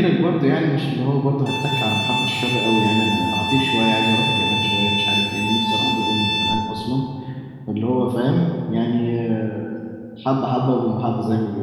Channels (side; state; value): both; identical; correlation 1.00